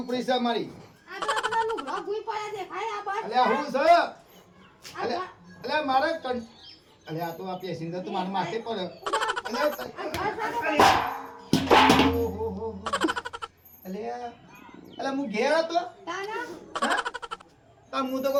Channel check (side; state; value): both; identical; correlation 1.00